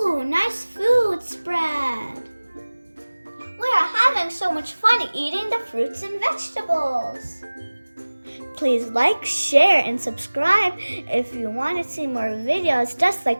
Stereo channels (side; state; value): both; inverted; correlation -1.00